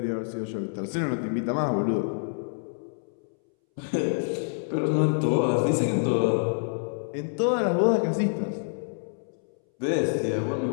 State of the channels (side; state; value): right; silent; 60 dB below the other